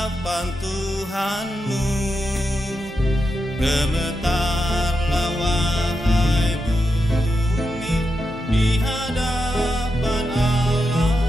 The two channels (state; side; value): normal; both; correlation 0.87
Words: Tuhanmu, gemetarlah wahai bumi di hadapan Allah